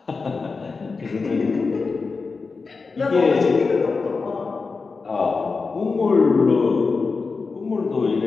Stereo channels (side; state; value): right; quieter; 4.4 dB